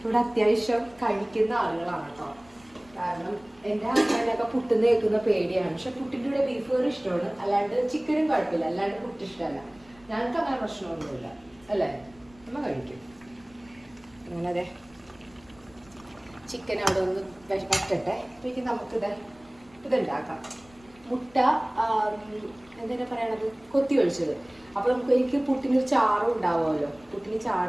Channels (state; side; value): noise; left; rumble, 28 dB below the sound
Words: അത്യാവശ്യം കഴിക്കുന്ന ആളുകളാണ് കേട്ടോ. കാരണം എൻ്റെ ഹസ്ബൻഡൊക്കെ പുട്ടിന്ന് കേൾക്കുന്ന പേടിയാണ്. പക്ഷെ പുട്ടിൻ്റെ കൂടെ ബീഫ് കറി ഇഷ്ടമാണ്, അല്ലാണ്ട് ചിക്കനും കുഴപ്പമില്ല, അല്ലാണ്ട് പുട്ട് ഇഷ്ടമല്ല. ഞങ്ങൾക്ക് അങ്ങനെ പ്രശ്നമൊന്നുമില്ല അല്ലേ, നമ്മൾ കഴിക്കും. അങ്ങനെ അതെ ചിക്കൻ അവിടെ ഒന്ന് വറ്റട്ടെ. അപ്പോഴേക്കും ഇതുണ്ടാക്കാം. മുട്ട എന്തിനാ പറയണത്, കൊത്തി ഒഴിച്ചത്. അപ്പൊ എനിക്ക് പുട്ടിനൊരു ചാറും ഉണ്ടാവുമല്ലോ. പുട്ടിന്